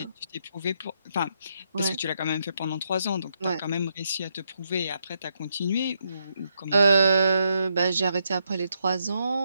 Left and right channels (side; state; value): both; inverted; correlation -0.79